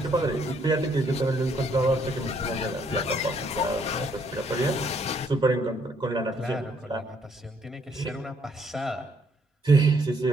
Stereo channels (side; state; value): both; normal; correlation 0.69